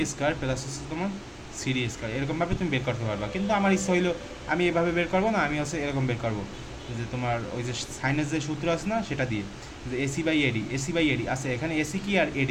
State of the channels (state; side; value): identical; both; correlation 1.00